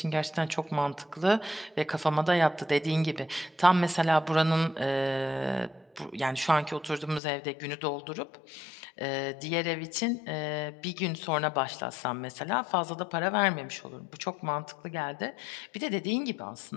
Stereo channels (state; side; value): drops out; right; at 7.2 s